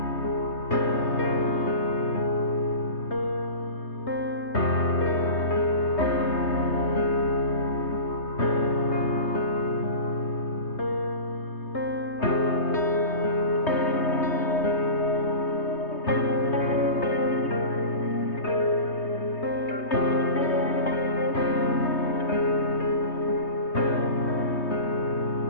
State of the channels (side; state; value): right; late; 3.2 ms